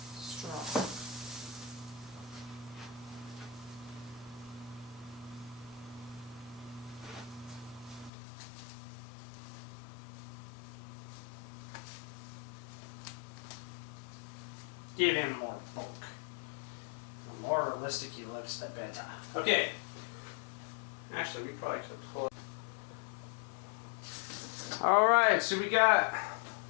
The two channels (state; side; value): drops out; right; at 8.1 s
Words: straw. Give him more bulk. The more realistic he looks, the better. Okay. Actually, we probably could pull it. Alright, so we got